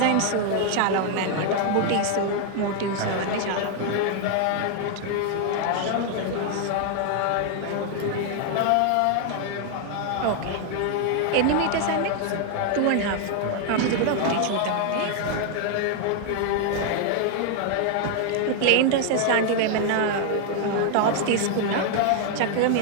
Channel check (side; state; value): both; different; correlation 0.00